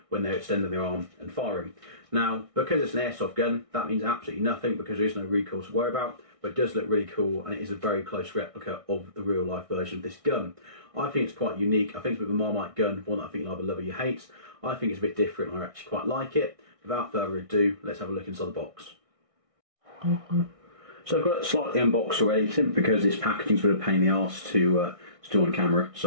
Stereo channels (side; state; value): left; late; 1.6 ms